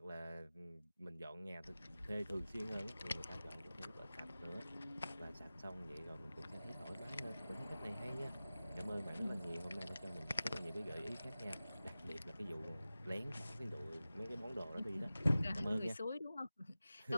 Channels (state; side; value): inverted; both; correlation -0.96